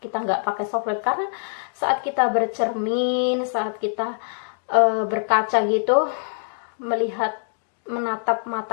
kita nggak pakai softline, karena saat kita bercermin, saat kita berkaca gitu, menatap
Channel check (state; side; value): silent; right; digital silence